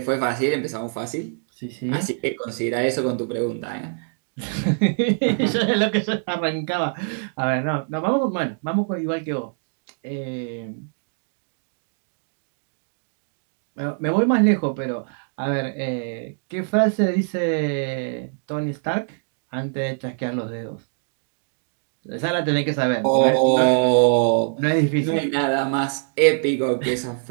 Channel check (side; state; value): left; silent; digital silence